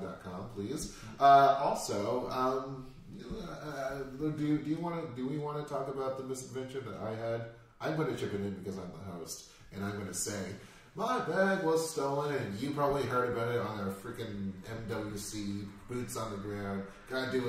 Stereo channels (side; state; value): both; identical; correlation 1.00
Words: please. Also, do we want to talk about the misadventure that I had? I'm going to chip it in because I'm the host, and I'm going to say my bag was stolen, and you probably heard about it on our freaking MWC boots on the ground. Gotta do